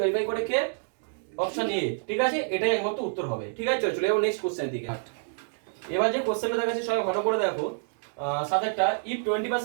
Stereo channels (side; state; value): left; silent; digital silence